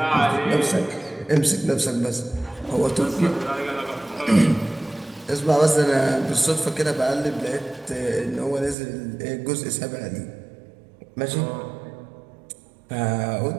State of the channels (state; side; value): drops out; left; at 8.8 s